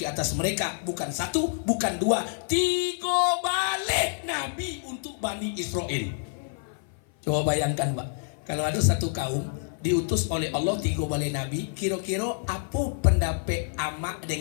atas mereka. Bukan satu, bukan dua, 3 balik Nabi untuk Bani Israel. Coba bayangkan Pak, kalau ada satu kaum diutus oleh Allah 3 balik Nabi, kira-kira apa pendapat amak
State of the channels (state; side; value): silent; right; 56 dB below the other